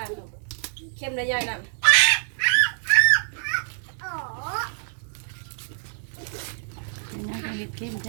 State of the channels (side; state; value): left; silent; digital silence